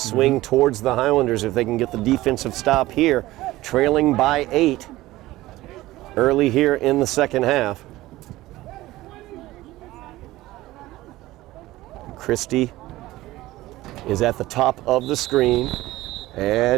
towards the Highlanders if they can get the defensive stop here, trailing by 8 early here in the second half. Christie is at the top of the screen,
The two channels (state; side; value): quieter; left; 17.3 dB